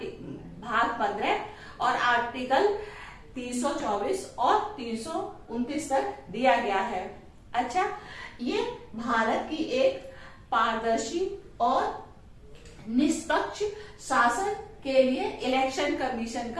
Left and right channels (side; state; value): both; identical; correlation 1.00